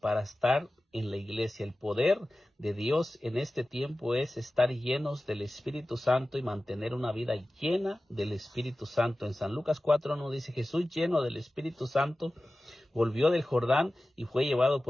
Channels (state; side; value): normal; both; correlation 0.96